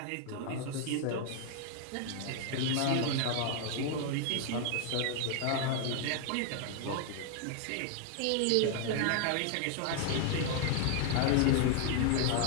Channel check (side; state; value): both; different; correlation 0.00